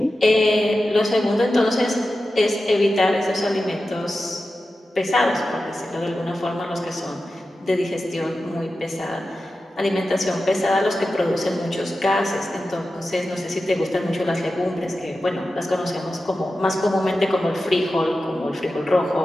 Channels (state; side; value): normal; both; correlation 0.92